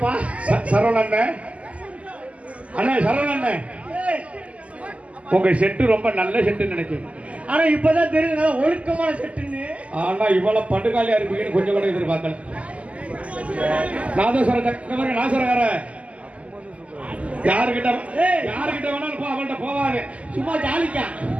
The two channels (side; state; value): left; late; 0.065 ms